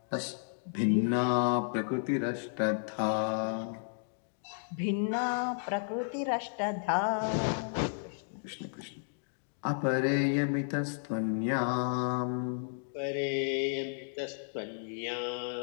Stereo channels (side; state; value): right; silent; digital silence